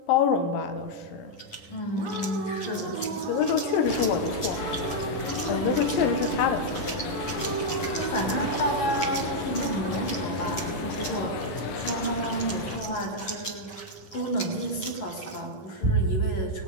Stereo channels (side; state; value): right; late; 10 ms